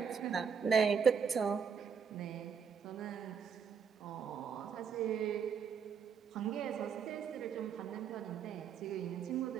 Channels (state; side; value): quieter; left; 6.7 dB